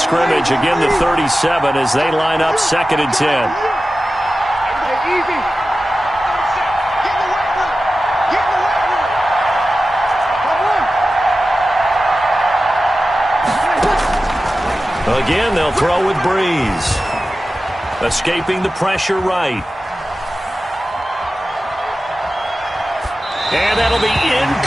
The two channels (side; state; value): both; normal; correlation 0.94